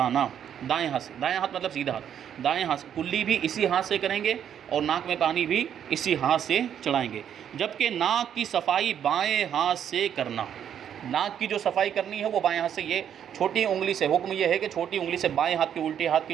دائیں ہاتھ مطلب سیدھا ہاتھ، دائیں ہاتھ سے کلی بھی اسی ہاتھ سے کریں گے اور ناک میں پانی بھی اسی ہاتھ سے چڑھائیں گے، جبکہ ناک کی صفائی بائیں ہاتھ سے کرنا۔ ناک کی جو صفائی کرنی ہے وہ بائیں ہاتھ سے، یہ چھوٹی انگلی سے، حکم یہ ہے کہ چھوٹی انگلی سے بائیں ہاتھ کی، الٹے ہاتھ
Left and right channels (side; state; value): left; quieter; 9.1 dB